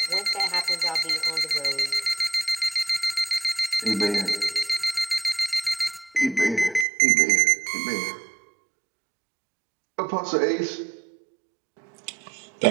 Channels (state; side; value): drops out; left; at 6.9 s